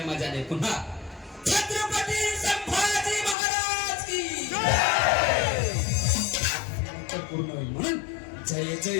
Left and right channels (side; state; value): right; drops out; at 3.4 s